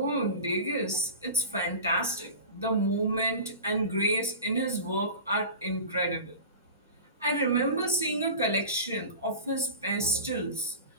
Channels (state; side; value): inverted; both; correlation -0.33